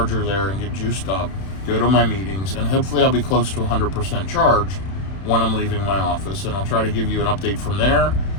there and get juiced up, go to my meetings, and hopefully I'll be close to 100% charged when I'm leaving my office. And I'll try to give you an update from there.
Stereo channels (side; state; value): right; late; 31 ms